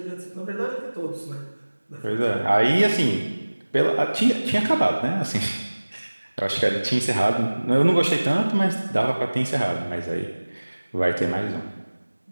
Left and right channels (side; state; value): both; inverted; correlation -1.00